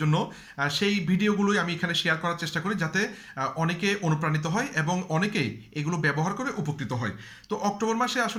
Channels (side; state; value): both; identical; correlation 1.00